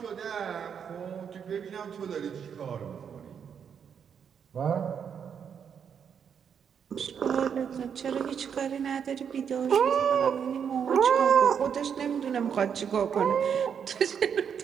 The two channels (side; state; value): left; quieter; 7.5 dB